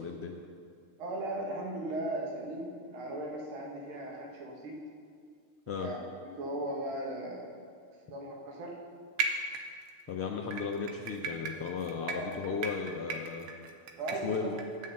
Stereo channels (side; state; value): left; late; 6.5 ms